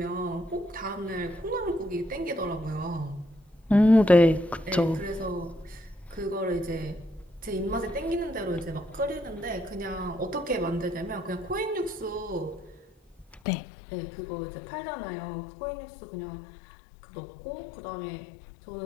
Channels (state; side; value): drops out; right; at 13.4 s